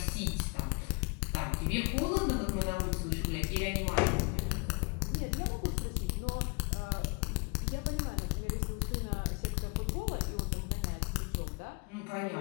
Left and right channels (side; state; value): right; quieter; 30.4 dB